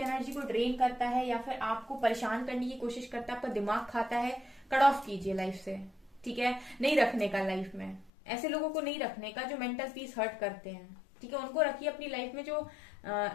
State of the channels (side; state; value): right; drops out; at 8.1 s